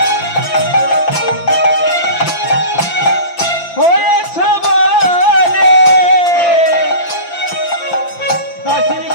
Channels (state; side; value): late; right; 5.9 ms